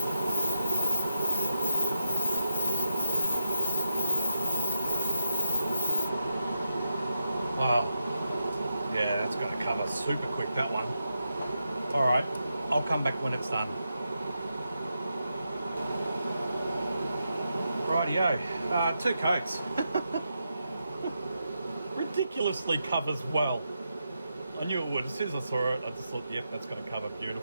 Wow, yeah, that's going to cover super quick, that one. All right, I'll come back when it's done. Rightio, 2 coats. Ridiculously covers well. I knew it would. As soon as I saw it, I just thought, yep, that's going to cover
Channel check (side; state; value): both; inverted; correlation -0.85